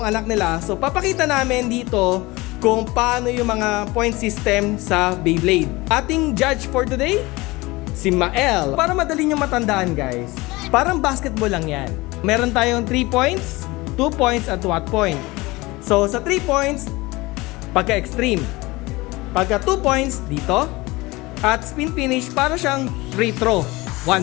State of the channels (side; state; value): right; quieter; 21.8 dB